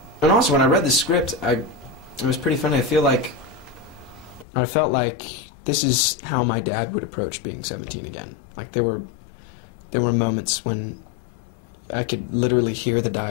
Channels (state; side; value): drops out; right; at 4.5 s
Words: also, when I read the script, it was pretty funny. I felt like this is how my dad would approach being 17 again. Like, there were moments when I could literally hear the